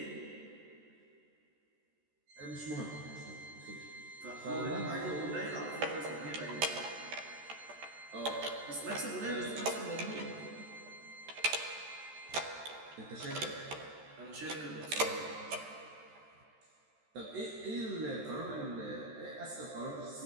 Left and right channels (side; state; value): left; late; 13 ms